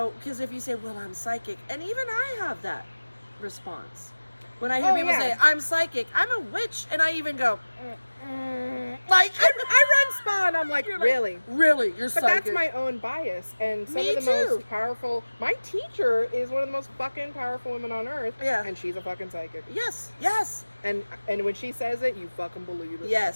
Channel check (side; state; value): both; inverted; correlation -1.00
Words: because if you say, well, I'm psychic, and even I have that response. When I hear people say, I'm psychic, I'm a witch, and I even go, like, I run spa, and I'm like, really? Really? You're psychic? But that's my own bias, and some of the most powerful, my teacher is one of the most fucking powerful women on earth, and she's a fucking psychic. Yes. And when she says it, you fucking believe it.